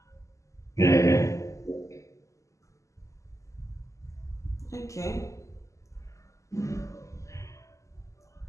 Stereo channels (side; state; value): right; late; 0.15 ms